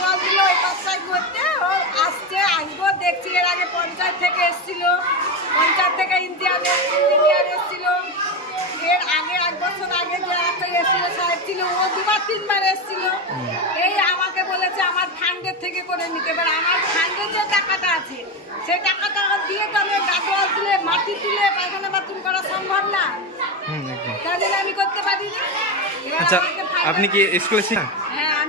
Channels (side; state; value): both; normal; correlation 0.16